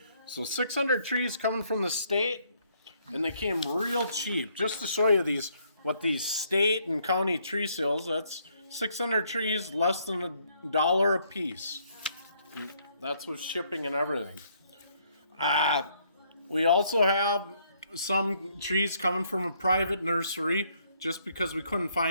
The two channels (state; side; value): inverted; both; correlation -0.69